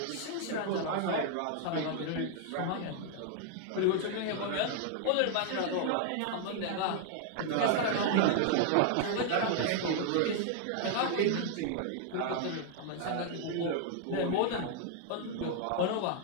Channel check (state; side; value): different; both; correlation 0.00